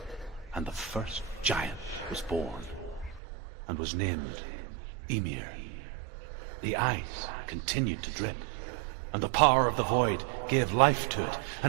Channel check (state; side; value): drops out; left; at 3.2 s